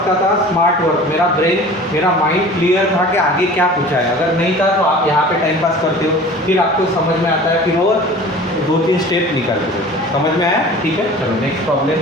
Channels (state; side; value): normal; both; correlation 0.42